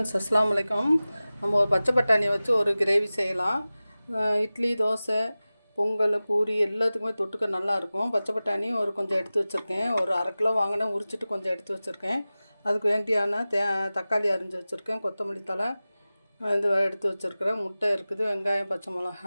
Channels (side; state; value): both; inverted; correlation -0.97